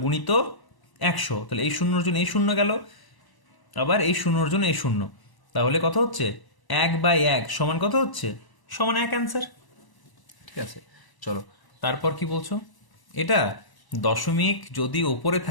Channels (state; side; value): late; right; 1.0 ms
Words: গুণিত 100, তাহলে এই শূন্যর জন্য এই শূন্য গেল, আবার এই শূন্যর জন্য এই শূন্য, তাহলে কত হচ্ছে 1/1 সমান কত হচ্ছে, সমান 1 অ্যান্সার, ঠিক আছে। চলো তারপর কি বলছো, এটা দশমিক যদি ওপরে